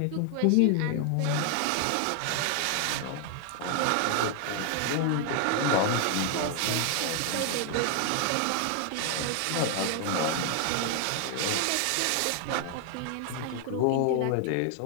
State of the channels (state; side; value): different; both; correlation 0.00